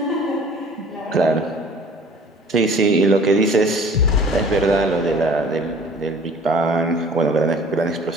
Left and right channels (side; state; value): both; normal; correlation 0.49